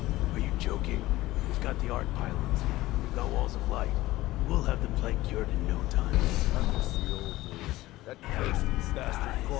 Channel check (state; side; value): quieter; right; 17.4 dB